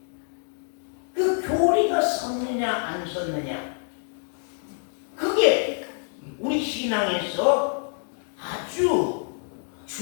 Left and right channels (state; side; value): silent; right; 58 dB below the other